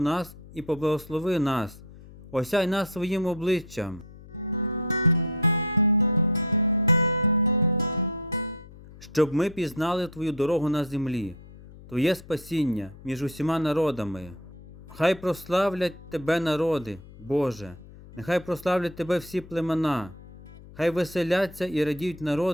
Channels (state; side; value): noise; left; hum, 19 dB below the sound